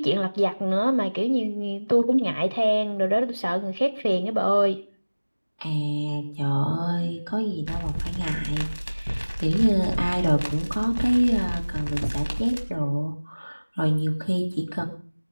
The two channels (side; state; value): both; inverted; correlation -1.00